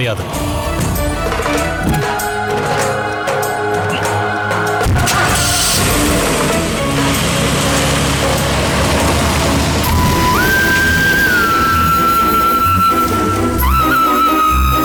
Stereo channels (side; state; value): both; identical; correlation 1.00